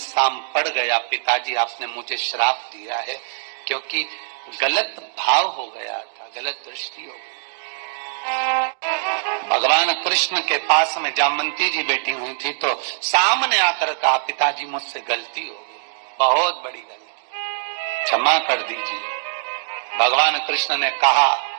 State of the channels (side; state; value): left; silent; digital silence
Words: पड़ गया। पिताजी आपने मुझे श्राप दिया है, क्योंकि गलत भाव हो गया था, गलत दृष्टि हो गई। भगवान कृष्ण के पास में जामवंती जी बैठी हुई थी, तो सामने आकर कहा, पिताजी मुझसे गलती हो गई, बहुत बड़ी गलती, क्षमा कर दीजिए। भगवान कृष्ण ने कहा,